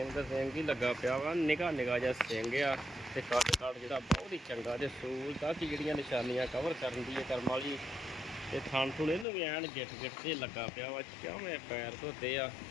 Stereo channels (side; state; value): right; drops out; at 9.2 s